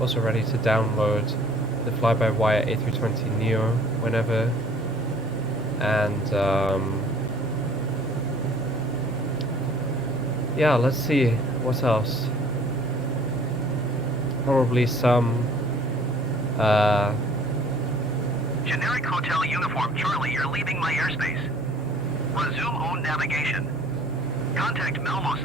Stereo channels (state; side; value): normal; both; correlation 0.53